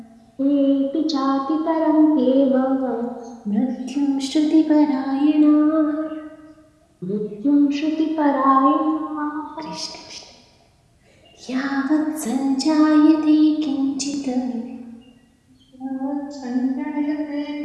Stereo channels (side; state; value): both; identical; correlation 1.00